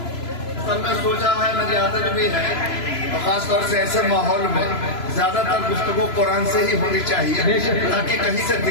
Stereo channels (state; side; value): late; right; 3.0 ms